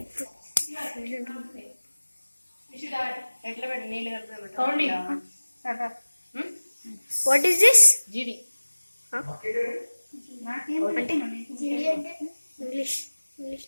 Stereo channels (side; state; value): both; inverted; correlation -1.00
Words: ఎట్లా పెట్టి నీళ్ళు కలుపుతాం వాట్ ఈస్ దిస్? జీడి అంటే ఇంగ్లీష్